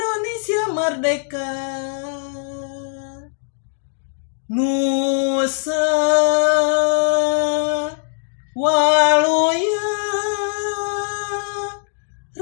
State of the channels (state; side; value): silent; right; digital silence